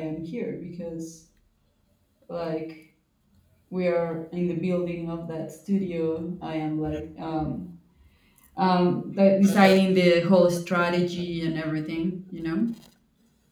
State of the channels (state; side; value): identical; both; correlation 1.00